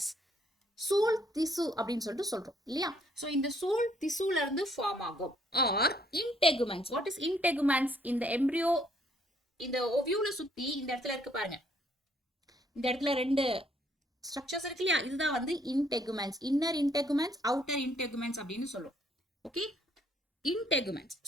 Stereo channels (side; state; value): both; normal; correlation 0.67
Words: சூல் திசு அப்படின்னு சொல்லிட்டு சொல்றோம் இல்லையா? ஸோ இந்த சூல் திசுல இருந்து ஃபார்ம் ஆகும். Or integuments. What is integuments? இந்த எம்ப்ரியோ இந்த ஓவியூல சுத்தி இந்த இடத்துல இருக்கு பாருங்க, இந்த இடத்துல 2 ஸ்ட்ரக்சர்ஸ் இருக்கு இல்லையா, இதுதான் வந்து இன்டெகுமெண்ட்ஸ். இன்னர் இன்டெகுமெண்ட்ஸ், அவுட்டர் இன்டெகுமெண்ட்ஸ் அப்படின்னு சொல்லுவோம். ஓகே, இன்டெகுமெண்ட்ஸ்.